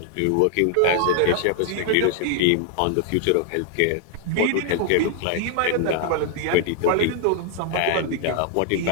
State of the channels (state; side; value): different; both; correlation 0.00